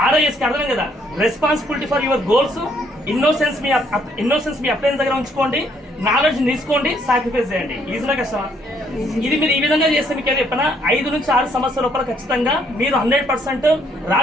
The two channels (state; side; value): normal; both; correlation 0.68